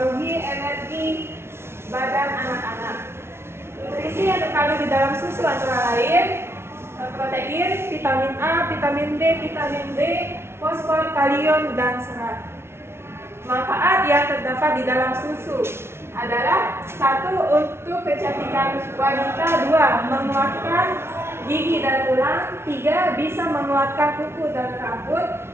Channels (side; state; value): left; late; 0.12 ms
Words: energi badan anak-anak. Nutrisi yang terkandung di dalam susu antara lain protein, vitamin A, vitamin D, vitamin D, fosfor, kalium, dan serat. Manfaat yang terdapat di dalam susu adalah 1. Untuk kecantikan wanita, 2. Menguatkan gigi dan tulang, 3. Bisa menguatkan kuku dan rambut,